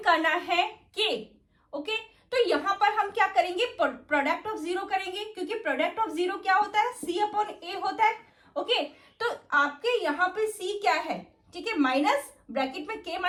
करना है k। ओके, तो यहां पर हम क्या करेंगे, प्रोडक्ट ऑफ जीरो करेंगे क्योंकि प्रोडक्ट ऑफ जीरो क्या होता है, c अपॉन a होता है। ओके, तो आपके यहाँ पे c क्या है, ठीक है, माइनस ब्रैकेट में k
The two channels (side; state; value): both; identical; correlation 1.00